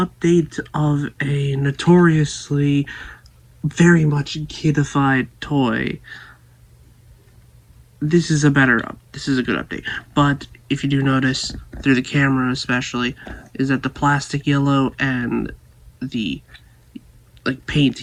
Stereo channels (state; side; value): identical; both; correlation 1.00